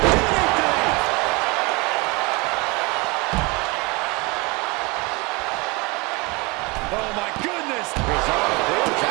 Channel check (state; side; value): quieter; left; 26.7 dB